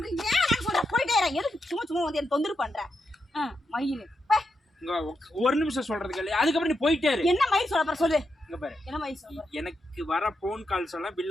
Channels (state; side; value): normal; both; correlation 0.84